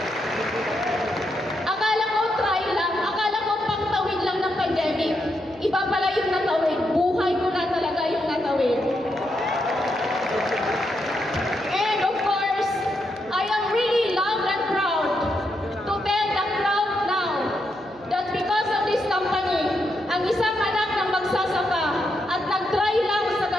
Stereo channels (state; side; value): noise; right; hum, 24 dB below the sound